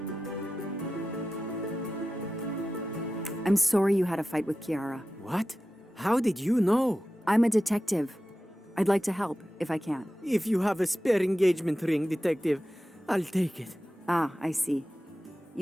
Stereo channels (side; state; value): both; normal; correlation 0.93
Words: I'm sorry you had a fight with Chiara. What? How did you know? I'm a detective. I'd like to help, if I can. If you have a spare engagement ring, detective, I'll take it. Ah, I see.